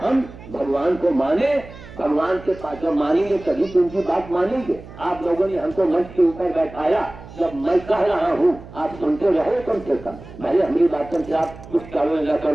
भगवान को माने, भगवान के पास जब मानेंगे तभी तो उनकी बात मानेंगे। आप लोगों ने हमको मंच के ऊपर बैठाया, जब मैं कह रहा हूँ आप सुनते रहो कम से कम, भले हमारी बातों से आप कुछ करो न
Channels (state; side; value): noise; right; hum, 17 dB below the sound